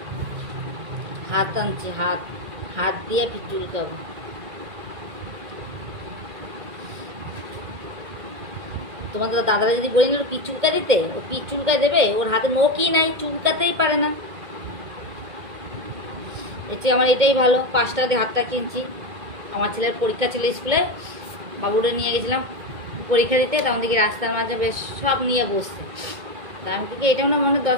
হাত আনছে, হাত হাত দিয়ে পিচুল খাবো। তোমাদের দাদারা যদি বলি না পিচুলকা দিতে, ও পিচুলকা দেবে? ওর হাতে নখই নাই, চুলকাতেই পারে না। এটি আমার এটাই ভালো, 5 টাকা দিয়ে হাতটা কিনছি। আমার ছেলের পরীক্ষা ছিল স্কুলে, বাবুরে নিয়ে গেছিলাম পরীক্ষা দিতে, তখন দেখি রাস্তার মাঝে বেশ সব নিয়ে বসছে। তা আমি কি এটাও না মনে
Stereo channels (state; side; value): late; left; 2.2 ms